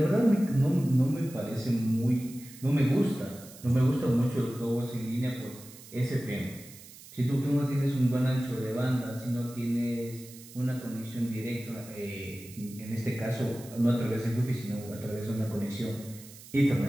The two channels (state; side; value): noise; right; hiss, 18 dB below the sound